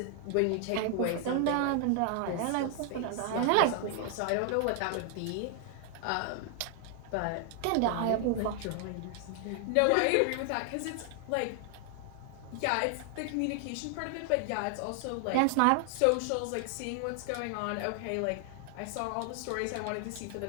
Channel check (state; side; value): different; both; correlation 0.00